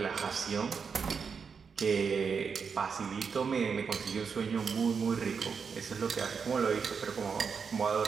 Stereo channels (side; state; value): left; quieter; 5.9 dB